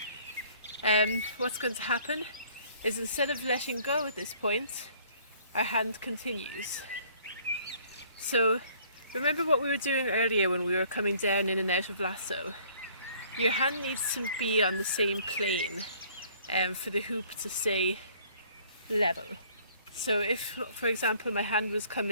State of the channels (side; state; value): both; inverted; correlation -0.58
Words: what's going to happen is instead of letting go at this point, our hand continues. So remember what we were doing earlier when we were coming down in and out of lasso? Your hand needs to be on the same plane for the hoop to stay level. So if, for example, my hand was